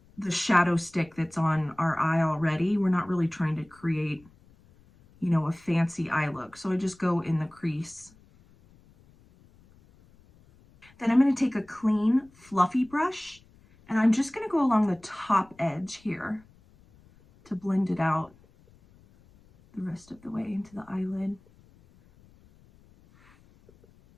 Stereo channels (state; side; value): noise; left; rumble, 28 dB below the sound